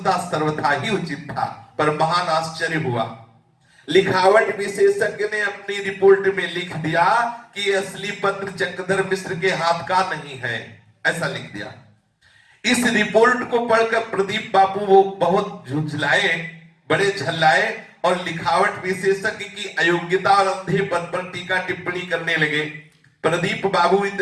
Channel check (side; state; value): both; identical; correlation 1.00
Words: सर्वथा ही उचित था। पर महान आश्चर्य हुआ, लिखावट विशेषज्ञ ने अपनी रिपोर्ट में लिख दिया कि असली पत्र चक्रधर मिश्र के हाथ का नहीं है, ऐसा लिख दिया। इस रिपोर्ट को पढ़कर प्रदीप बाबू वो बहुत झुंझलाए, बड़े झल्लाए और लिखावट विशेषज्ञ की अयोग्यता और अंधेपन पर टीका टिप्पणी करने लगे। प्रदीप बाबू